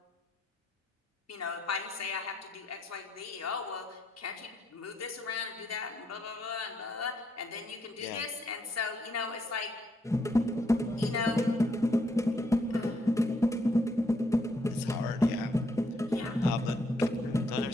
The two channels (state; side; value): normal; both; correlation 0.74